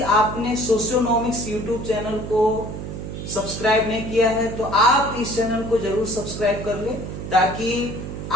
आपने सोशियोनोमिक्स यूट्यूब चैनल को सब्सक्राइब नहीं किया है तो आप इस चैनल को जरूर सब्सक्राइब कर लें ताकि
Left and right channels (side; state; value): right; noise; hum, 7 dB below the sound